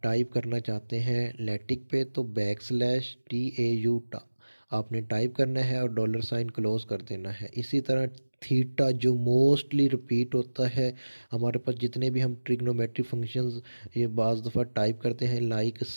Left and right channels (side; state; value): both; inverted; correlation -1.00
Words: टाइप करना चाहते हैं लैटिक पे तो बैक स्लैश TAU टा आपने टाइप करना है और डॉलर साइन क्लोज कर देना है। इसी तरह थीटा जो मोस्टली रिपीट होता है हमारे पास, जितने भी हम ट्रिग्नोमेट्रिक फंक्शंस ये बाज़ दफ़ा टाइप करते हैं, लाइक